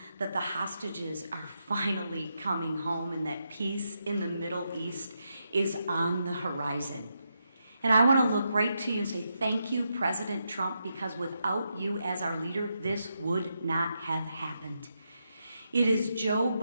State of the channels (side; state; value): both; inverted; correlation -0.84